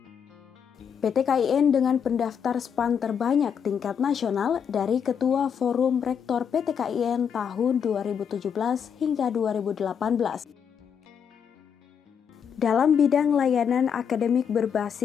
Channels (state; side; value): quieter; right; 7.5 dB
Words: PT KIN dengan pendaftar SPAN terbanyak tingkat nasional dari Ketua Forum Rektor PT KIN tahun 2017 hingga 2018. Dalam bidang layanan akademik